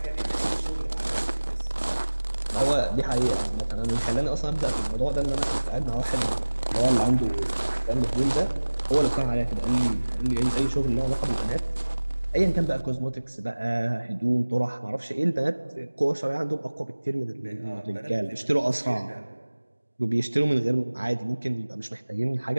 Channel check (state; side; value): inverted; both; correlation -1.00